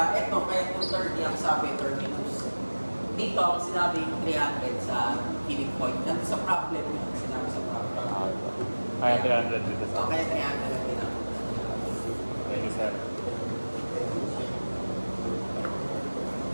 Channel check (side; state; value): both; inverted; correlation -1.00